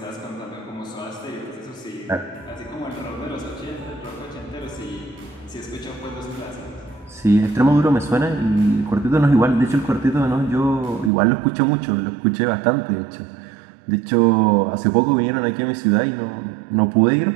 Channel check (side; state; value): left; drops out; at 11.1 s